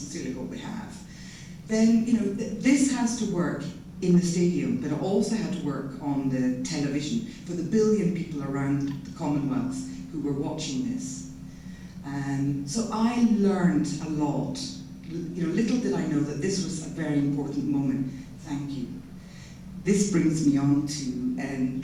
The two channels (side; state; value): both; identical; correlation 1.00